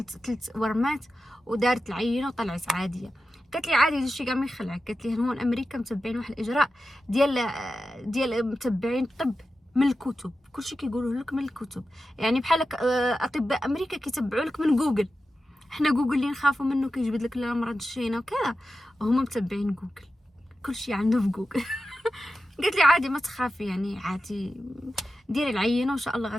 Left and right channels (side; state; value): both; normal; correlation 0.92